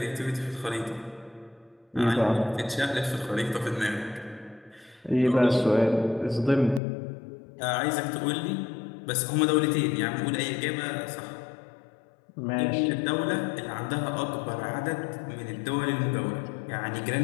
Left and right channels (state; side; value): drops out; right; at 6.8 s